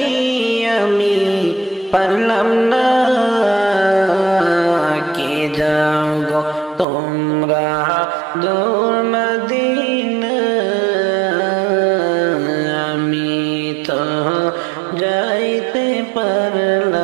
আমি পারলাম না। কে যাও গো তোমরা দূর মদিনা, আমি তো যাইতে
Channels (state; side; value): drops out; left; at 6.9 s